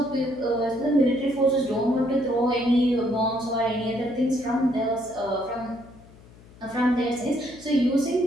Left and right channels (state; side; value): noise; left; hum, 23 dB below the sound